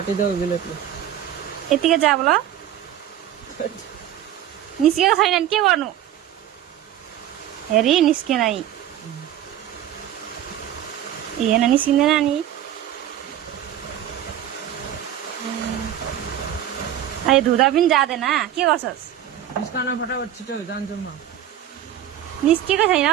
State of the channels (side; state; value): left; quieter; 11.2 dB